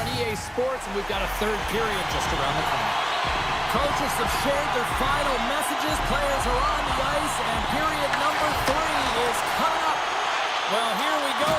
EA Sports, and we've got a third period just around the corner. Coaches have shared their final messages. Players are on the ice, and period number 3 is coming up. Well, here we go.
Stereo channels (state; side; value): identical; both; correlation 1.00